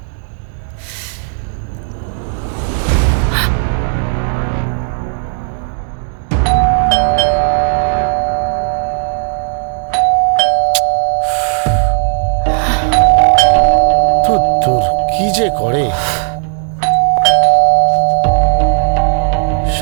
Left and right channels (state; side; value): silent; left; 65 dB below the other